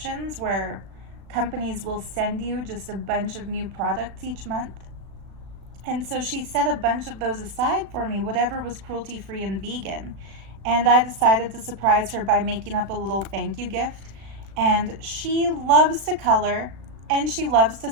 where companies will send you just a bunch of new products each month. And so she set a bunch of those aside for me, whatever was cruelty-free and vegan. and I decided to surprise her by making up a little thank you gift. And she loves to color and she loves to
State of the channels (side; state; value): left; late; 36 ms